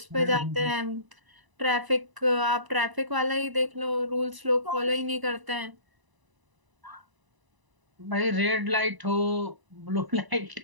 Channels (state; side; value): late; left; 1.0 ms